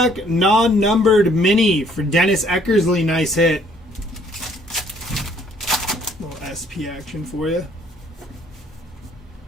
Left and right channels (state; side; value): normal; both; correlation 0.62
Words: non-numbered mini for Dennis Eckersley. Nice hit. Little SP action for you.